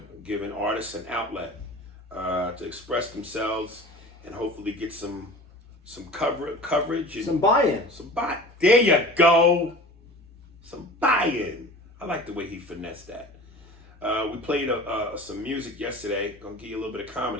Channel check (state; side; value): normal; both; correlation 0.39